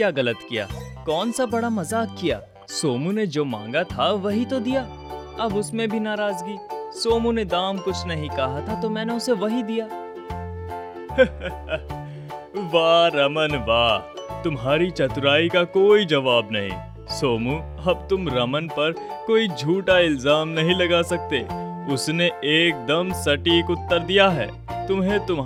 गलत किया? कौन सा बड़ा मजाक किया? सोमू ने जो मांगा था वही तो दिया, अब उसमें भी नाराजगी। सोमू ने दाम कुछ नहीं कहा था तो मैंने उसे वही दिया। वाह रमन वाह, तुम्हारी चतुराई का कोई जवाब नहीं। सोमू, अब तुम रमन पर कोई झूठा इल्जाम नहीं लगा सकते। उसने एकदम सटीक उत्तर दिया है। तुम्हें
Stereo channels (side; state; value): both; identical; correlation 1.00